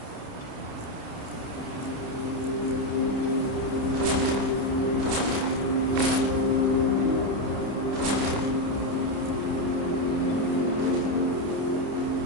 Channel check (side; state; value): left; late; 29 ms